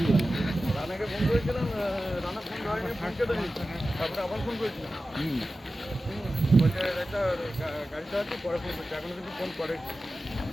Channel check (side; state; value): both; normal; correlation 0.94